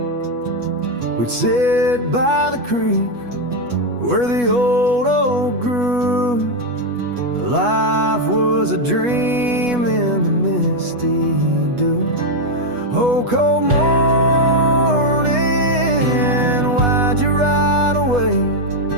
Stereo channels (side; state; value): left; late; 8.2 ms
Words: We'd sit by the creek where the old oak grew. Life was a dream in the misty dew. Oh, cold morning, why'd you ride away?